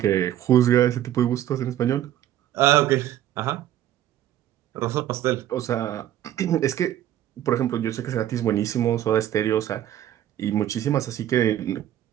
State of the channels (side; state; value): left; quieter; 12.0 dB